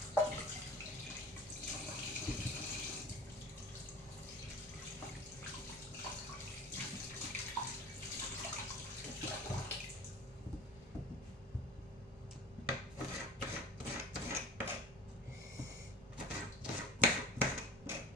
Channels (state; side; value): normal; both; correlation 0.41